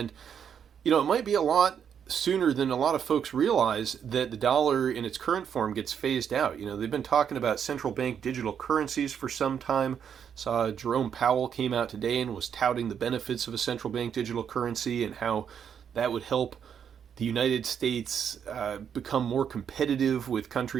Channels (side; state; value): left; quieter; 8.0 dB